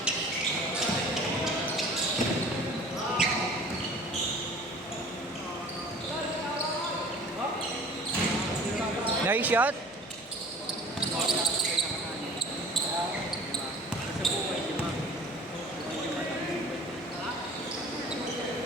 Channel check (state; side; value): noise; left; hum, 24 dB below the sound